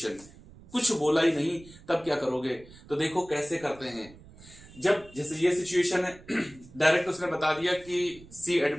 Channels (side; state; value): right; noise; rumble, 21 dB below the sound